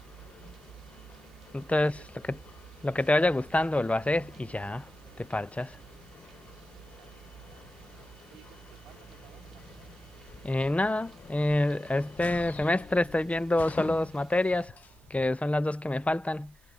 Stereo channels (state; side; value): normal; both; correlation 0.94